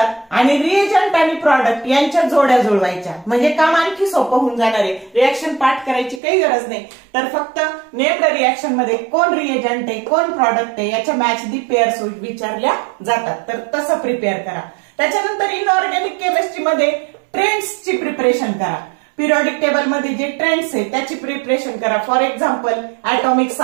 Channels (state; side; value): drops out; left; at 6.2 s